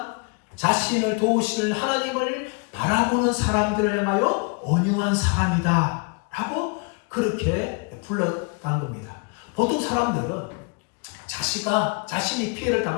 자신을 도우시는 하나님을 바라보는 사람들을 향하여 온유한 사람이다 라고 그렇게 불렀다는 겁니다. 보통 사람들은 자신이 피해를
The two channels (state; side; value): quieter; right; 32.6 dB